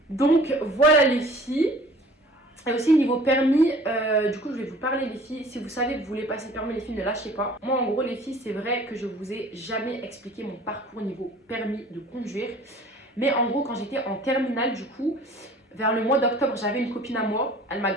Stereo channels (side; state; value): both; normal; correlation 0.49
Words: Donc voilà les filles. Et aussi niveau permis, du coup je vais vous parler les filles. Si vous savez que vous voulez passer le permis les filles, ne lâchez pas. Moi en gros les filles, c'est vrai que je vous ai jamais expliqué mon parcours niveau permis de conduire. Mais en gros quand j'étais en terminale du coup, vers le mois d'octobre, j'avais une copine à moi. Elle m'a